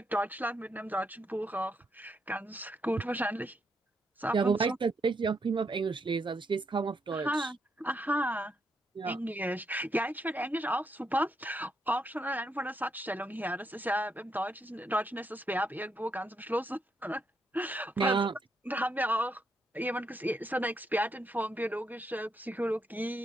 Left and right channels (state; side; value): normal; both; correlation 0.77